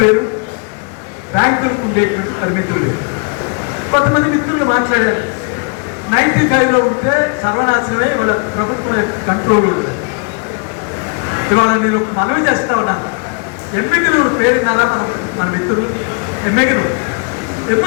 వేరు, బ్యాంకులకు ఉండేటువంటి పరిమితులు వేరు. కొంతమంది మిత్రులు మాట్లాడారు 95లో ఉంటే సర్వనాశనమే వాళ్ళ ప్రభుత్వం కంట్రోల్ ఉంటుంది. ఇవాళ నేను మనవి చేస్తా ఉన్నాను. ఎమ్మిగినూరు పేరున్నారా మన మిత్రులు?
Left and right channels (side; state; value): right; quieter; 38.7 dB